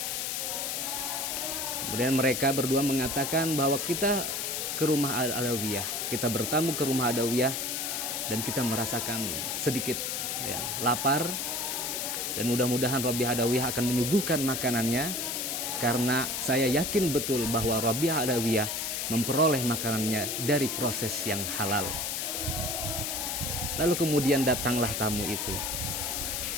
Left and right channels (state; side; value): noise; left; hiss, 2 dB below the sound